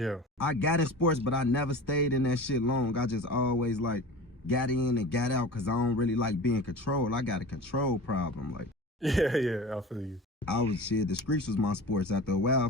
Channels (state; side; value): normal; both; correlation 0.36